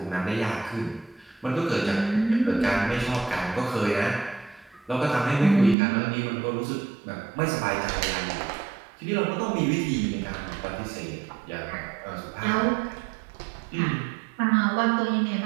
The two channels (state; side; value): drops out; left; at 5.8 s